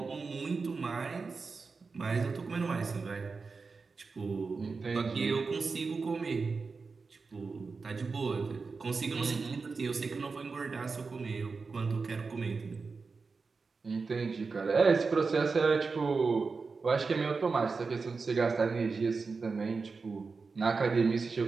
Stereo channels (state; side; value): quieter; left; 4.5 dB